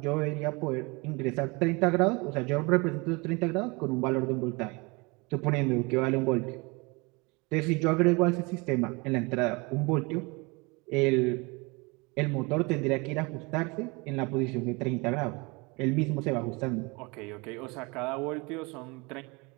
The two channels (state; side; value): quieter; left; 27.1 dB